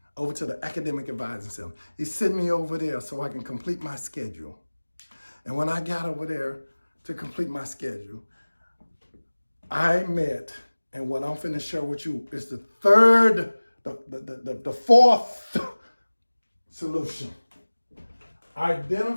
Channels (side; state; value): both; inverted; correlation -1.00